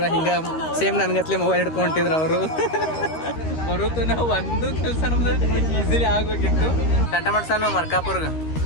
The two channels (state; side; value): late; right; 13 ms